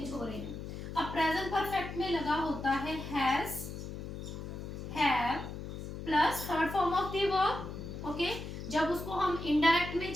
हो रहे हैं। अब प्रेजेंट परफेक्ट में लगा होता है has, have plus third form of the verb. Okay, जब उसको हम इनडायरेक्ट में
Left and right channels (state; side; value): noise; left; hum, 8 dB below the sound